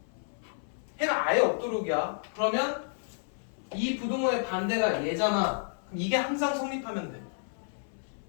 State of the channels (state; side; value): silent; right; 57 dB below the other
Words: 해가 아예 없도록이야. 그러면 이 부등호의 반대가 얘잖아. 그럼 이게 항상 성립하면 돼.